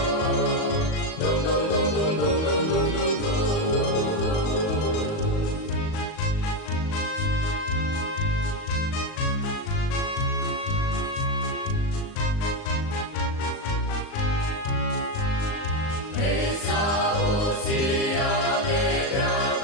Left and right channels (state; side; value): late; right; 38 ms